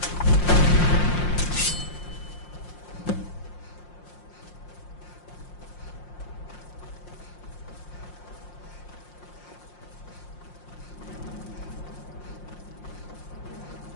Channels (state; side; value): late; right; 5.6 ms